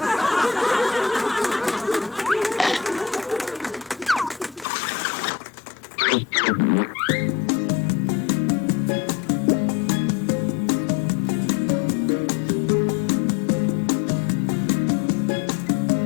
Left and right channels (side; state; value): right; drops out; at 4.7 s